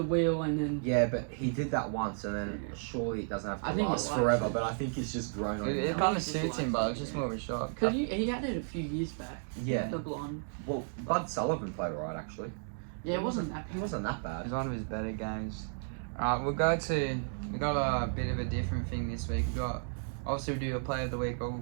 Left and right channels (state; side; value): silent; left; digital silence